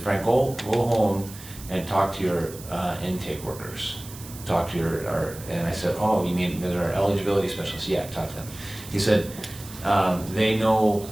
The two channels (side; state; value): right; noise; hiss, 16 dB below the sound